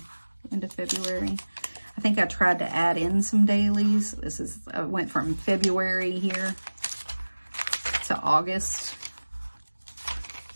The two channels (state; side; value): inverted; both; correlation -1.00